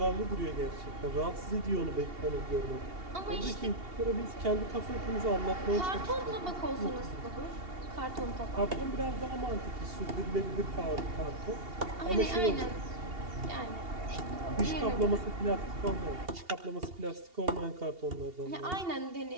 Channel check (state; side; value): late; left; 2.8 ms